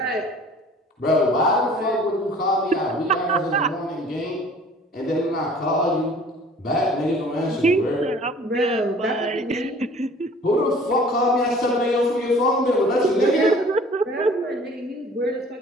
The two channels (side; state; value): both; normal; correlation 0.50